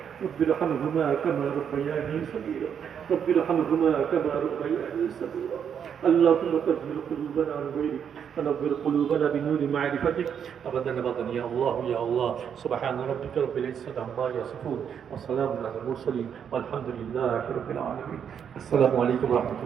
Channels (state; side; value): quieter; left; 8.0 dB